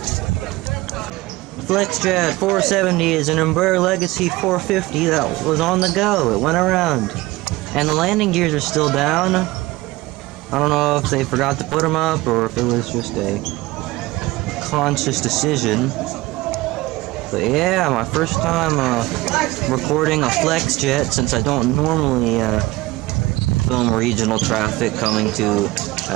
FlexJet 470 is an Embraer Legacy 450 that was on the go. It went around. And the landing gears are still down. I don't know if they forgot to put them up or if it was just a conscious decision. But yeah, my first time recording a FlexJet since I don't normally film regional traffic coming to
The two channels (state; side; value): quieter; left; 19.7 dB